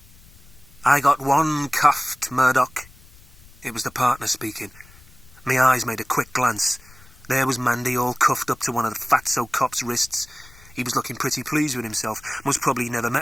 I got one cuffed, Murdoch. It was the partner speaking. My eyes made a quick glance. There was Mandy, all cuffed up to one of the fatso cop's wrists. He was looking pretty pleased with himself. Most probably never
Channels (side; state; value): left; noise; rumble, 24 dB below the sound